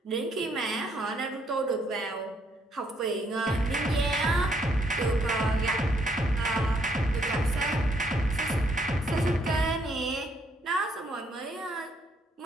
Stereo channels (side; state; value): both; normal; correlation 0.70